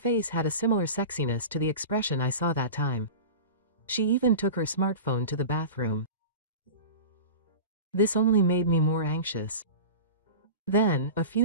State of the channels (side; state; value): both; inverted; correlation -0.32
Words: had a similar sexiness to the expression I saw that time. She even took her smartphone to the bathroom. This only made me more anxious. Then, a